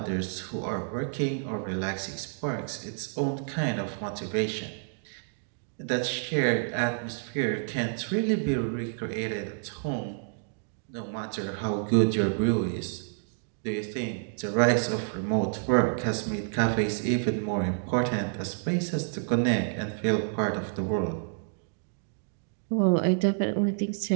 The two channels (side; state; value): left; silent; digital silence